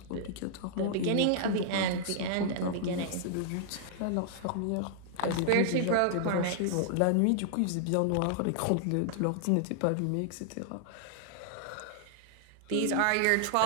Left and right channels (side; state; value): both; different; correlation -0.01